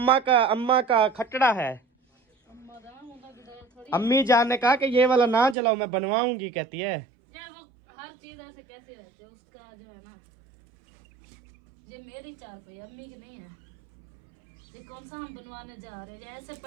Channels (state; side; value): drops out; left; at 5.6 s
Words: का खटड़ा है। अम्मी जान ने कहा कि ये वाला ना जलाओ, मैं बनवाऊंगी, कहती है। हर चीज ऐसे कैसे रहते है, उसका जो है ना, ये मेरी चारपाई अम्मी की नहीं है, ये कौन सा हम बनवाने जा रहे हैं? ऐसे